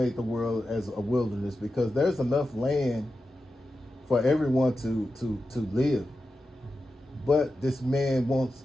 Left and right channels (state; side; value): normal; both; correlation 0.91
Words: the world as a wilderness, because there's enough land for everyone to live. But this man wants,